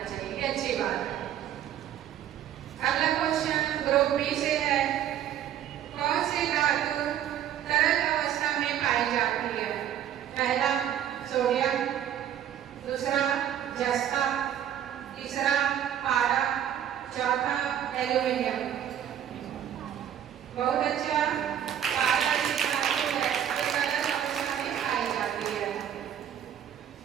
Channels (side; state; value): left; quieter; 10.3 dB